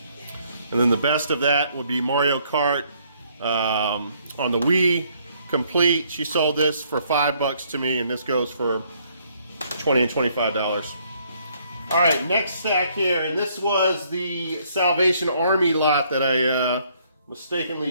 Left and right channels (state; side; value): inverted; both; correlation -0.67